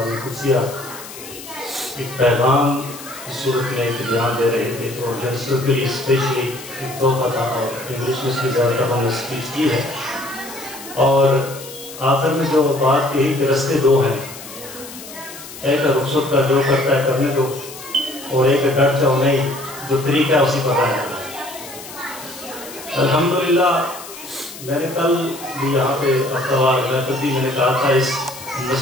قدسیہ ایک پیغام کی صورت میں ایک بیان دے رہے تھے، تو جنسوں کے لیے اسپیشلی ایک تحفہ تھا اور انگلش میں اس کی زیادہ تر ہم نے اسپیچ کی ہے. اور آخر میں جو بات کہی کہ رستے دو ہیں، ایک رخصت کا جو کرتا ہے کرنے دو، اور ایک ڈٹ جاؤ نہیں، جو طریقہ ہے اسی پر آیا. الحمدللہ میں نے کل بھی یہاں پہ ہفتہ محفل دی، میں نے کہا تھا اس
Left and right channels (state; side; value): noise; left; hiss, 14 dB below the sound